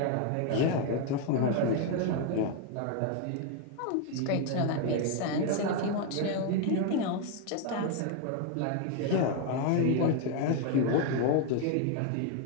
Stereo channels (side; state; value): both; different; correlation 0.01